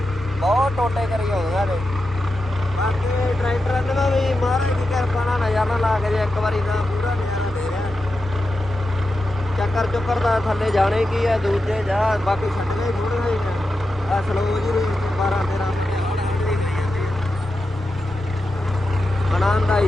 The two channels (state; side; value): noise; left; rumble, 16 dB below the sound